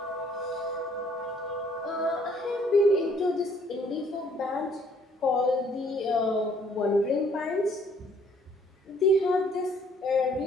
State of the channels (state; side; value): normal; both; correlation 0.62